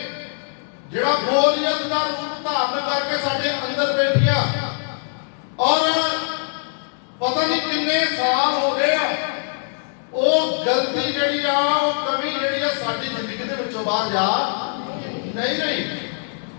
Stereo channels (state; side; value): silent; right; digital silence